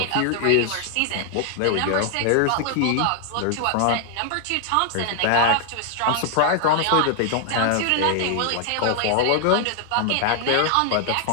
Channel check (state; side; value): different; both; correlation 0.00